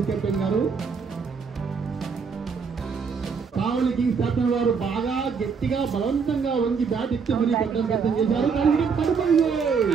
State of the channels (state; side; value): quieter; left; 5.7 dB